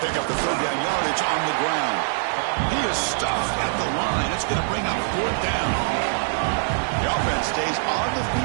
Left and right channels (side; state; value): left; silent; digital silence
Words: pick up the third down yardage on the ground. He is stuffed at the line. It's going to bring up 4th down. The offense stays on the